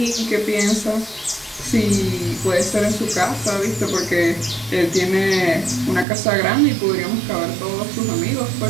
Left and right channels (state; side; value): drops out; left; at 6.1 s